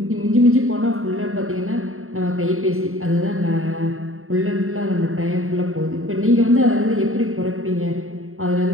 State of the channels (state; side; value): late; left; 0.62 ms